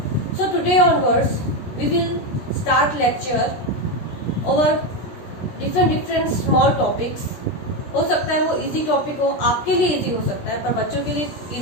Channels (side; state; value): right; late; 16 ms